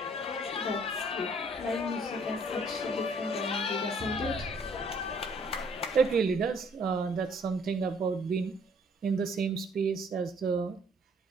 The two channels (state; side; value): normal; both; correlation 0.61